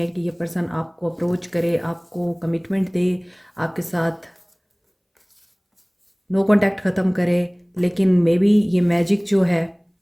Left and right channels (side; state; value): both; identical; correlation 1.00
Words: कि ये पर्सन आपको अप्रोच करे, आपको कमिटमेंट दे, आपके साथ नो कांटेक्ट ख़त्म करे। लेकिन मे बी ये मैजिक जो है